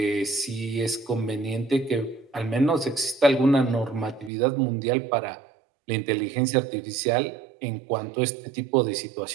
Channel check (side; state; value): left; drops out; at 4.3 s